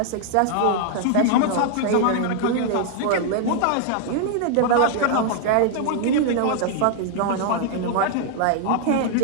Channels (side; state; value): both; different; correlation 0.00